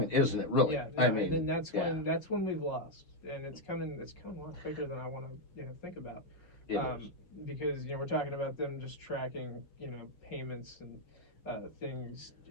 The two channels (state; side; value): late; right; 5.6 ms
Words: isn't it? Really? Yeah, no, I and mean, then that's yeah, when we've lost, and it's coming a lot quicker than I want to think about, it is. because we're talking about them just tracking payments and things